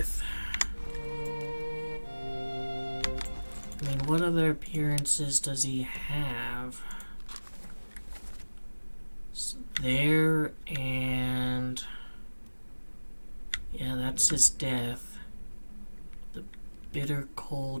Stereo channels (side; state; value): both; inverted; correlation -1.00